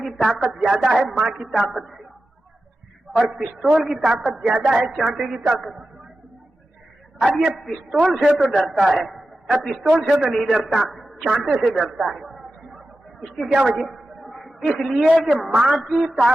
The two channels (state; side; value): normal; both; correlation 0.93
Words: کی طاقت زیادہ ہے ماں کی طاقت سے، اور پستول کی طاقت زیادہ ہے چانٹے کی طاقت۔ اب یہ پستول سے تو ڈرتا ہے، اب پستول سے تو نہیں ڈرتا، چانٹے سے ڈرتا ہے۔ اس کی کیا وجہ؟ اس لیے کہ ماں کی